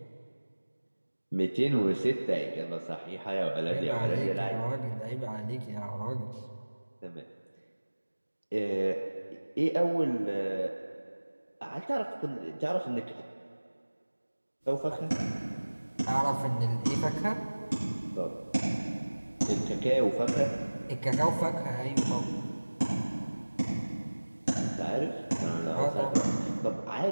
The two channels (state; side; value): inverted; both; correlation -1.00